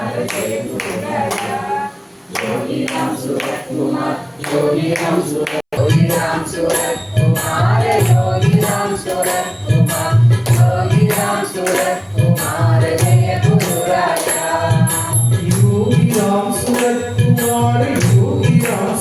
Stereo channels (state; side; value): identical; both; correlation 1.00